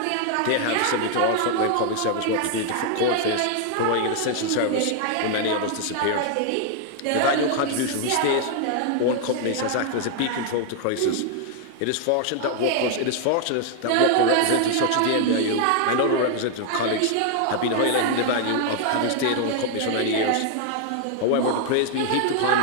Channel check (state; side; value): different; both; correlation 0.00